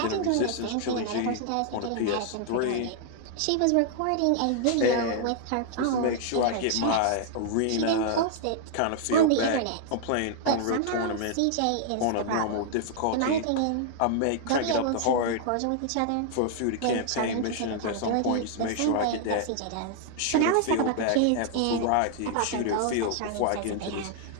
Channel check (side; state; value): both; different; correlation 0.00